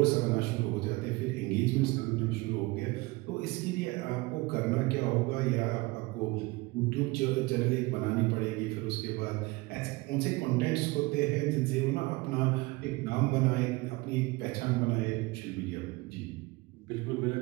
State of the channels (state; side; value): quieter; left; 23.0 dB